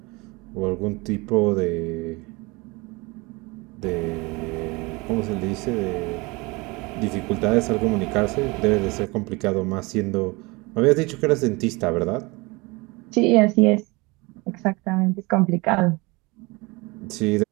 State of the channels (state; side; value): quieter; left; 25.3 dB